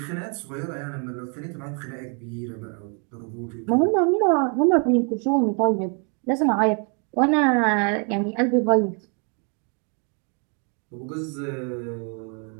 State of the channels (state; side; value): quieter; left; 38.7 dB